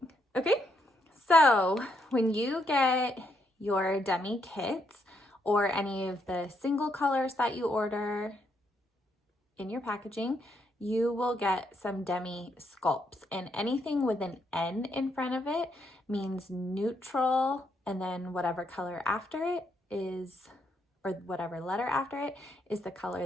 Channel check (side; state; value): both; normal; correlation 0.77